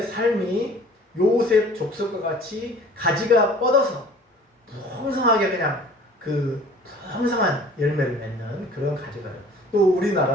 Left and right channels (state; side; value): normal; both; correlation 0.49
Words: 삶이 요셉 족속과 같이 가지가 뻗어서 풍성하게 그냥 그 풍성한 열매를 맺는 그런 가지가 돼요. 또